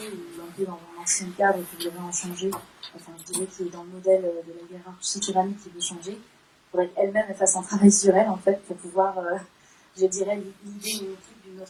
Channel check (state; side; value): identical; both; correlation 1.00